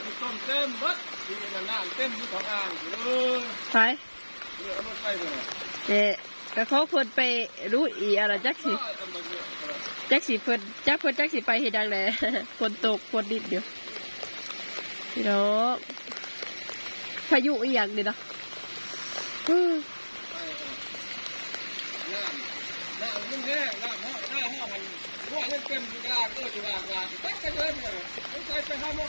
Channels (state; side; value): inverted; both; correlation -1.00